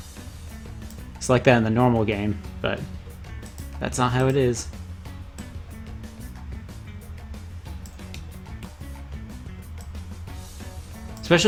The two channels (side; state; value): both; identical; correlation 1.00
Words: like that in the normal game, but That's not how it is.